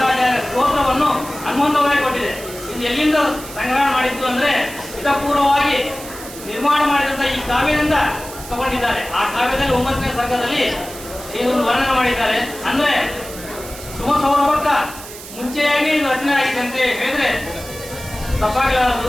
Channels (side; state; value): right; noise; hiss, 14 dB below the sound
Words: ಸ್ತೋತ್ರವನ್ನು ಹನುಮಂತವಾಗಿ ಕೊಟ್ಟಿದೆ. ಇದು ಎಲ್ಲಿಂದ ಸಂಗ್ರಹಣ ಮಾಡಿದ್ದು ಅಂದ್ರೆ ಹಿತಪೂರ್ವವಾಗಿ ನಿರ್ಮಾಣ ಮಾಡಿದಂತ ಈ ಕಾವ್ಯದಿಂದ ತಗೊಂಡಿದ್ದಾರೆ. ಆ ಕಾವ್ಯದಲ್ಲಿ 9ನೇ ಸರ್ಗದಲ್ಲಿ ಇದನ್ನು ವರ್ಣನೆ ಮಾಡಿದ್ದಾರೆ. ಅಂದ್ರೆ ಸುಮಸೌರಭಕ್ಕ ಮುಂಚೆಯಾಗಿ ಇದು ರಚನೆ ಆಗಿದೆ ಅಂತ ಹೇಳಿದ್ರೆ ತಪ್ಪಾಗಲಾರದು.